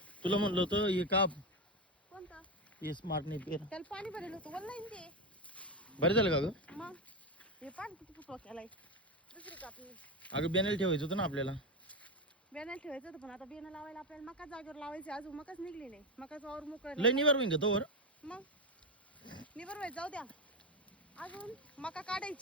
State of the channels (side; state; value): both; normal; correlation 0.14